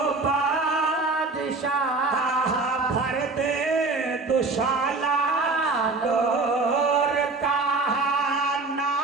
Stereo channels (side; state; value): left; quieter; 3.7 dB